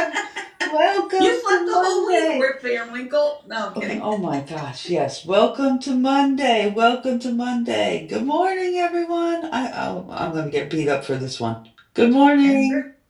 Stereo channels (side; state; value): both; identical; correlation 1.00